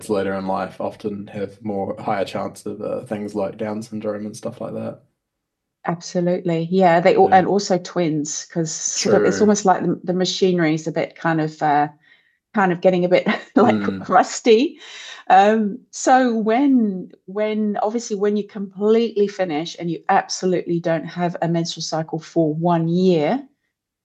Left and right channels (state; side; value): identical; both; correlation 1.00